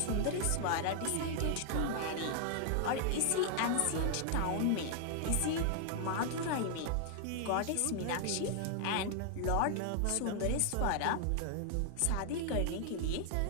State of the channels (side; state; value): both; different; correlation 0.00